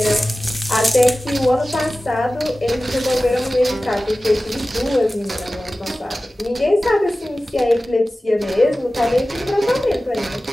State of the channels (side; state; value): both; normal; correlation 0.96